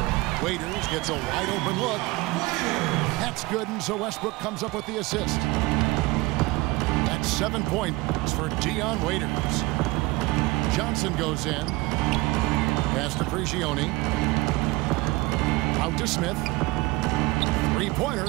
Waiters gets a wide open look. That's good, and so Westbrook comes up with the assist. That's 7 points for Dion Waiters. Johnson goes in. Pass to Prigioni. Out to Smith.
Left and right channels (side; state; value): left; quieter; 21.8 dB